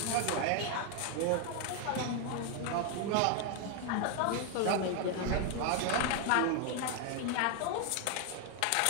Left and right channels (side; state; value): both; different; correlation 0.01